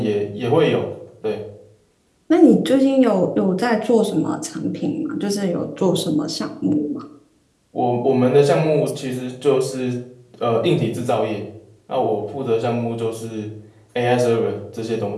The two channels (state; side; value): identical; both; correlation 1.00